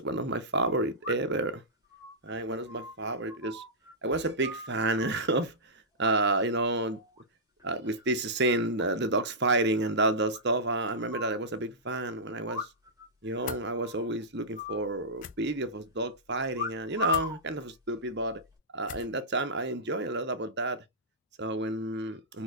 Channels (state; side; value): normal; both; correlation -0.14